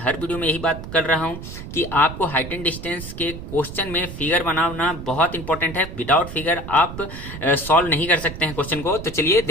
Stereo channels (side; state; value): right; noise; rumble, 10 dB below the sound